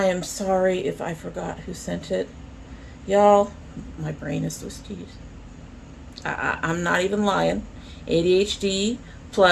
am sorry if I forgot who sent it. Y'all, my brain is twisted. I'm not even lying. ADHD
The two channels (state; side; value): identical; both; correlation 1.00